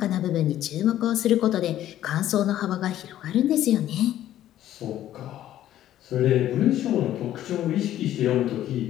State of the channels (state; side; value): quieter; right; 12.6 dB